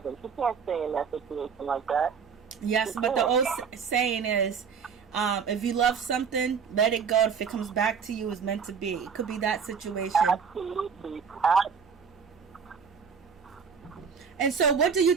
him. She can't stay in that situation like that. Yes, but the old saying is, if you love something, let it go. If it comes back to you, it's meant to be. It could be that situation. Absolutely. And so, what do you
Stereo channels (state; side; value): quieter; left; 6.3 dB